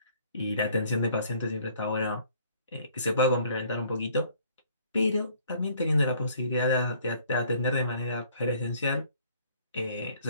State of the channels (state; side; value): inverted; both; correlation -0.59